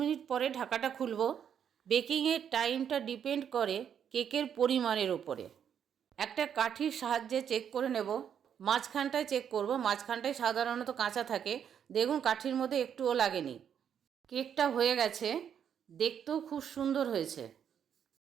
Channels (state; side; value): quieter; left; 8.5 dB